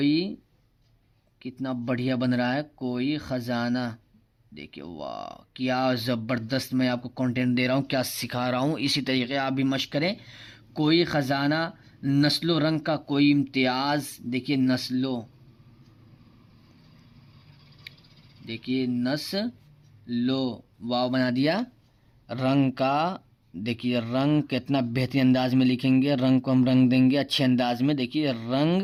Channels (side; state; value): both; identical; correlation 1.00